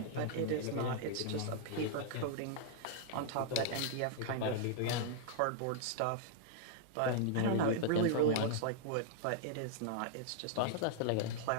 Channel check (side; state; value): both; different; correlation -0.01